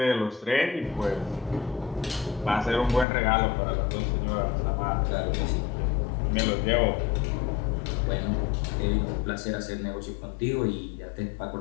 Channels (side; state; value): right; drops out; at 3.1 s